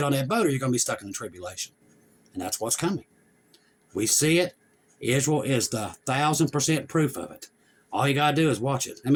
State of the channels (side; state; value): both; identical; correlation 1.00